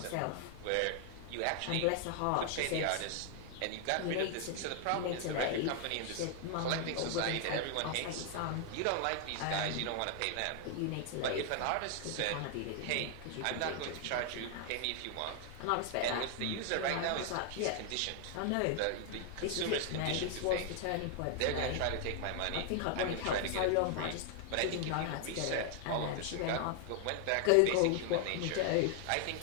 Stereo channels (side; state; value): both; different; correlation 0.00